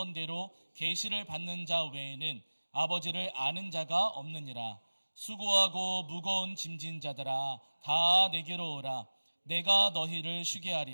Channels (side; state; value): both; inverted; correlation -1.00